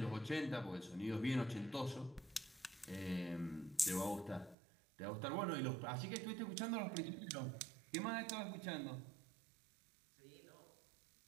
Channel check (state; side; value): drops out; left; at 4.5 s